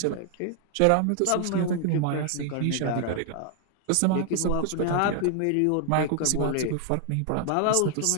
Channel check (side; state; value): both; different; correlation 0.00